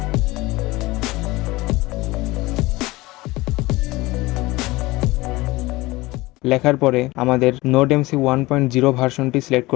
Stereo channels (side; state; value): right; quieter; 20.5 dB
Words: লেখার পরে আমাদের নোডএমসি 1.0 ভার্সনটি সিলেক্ট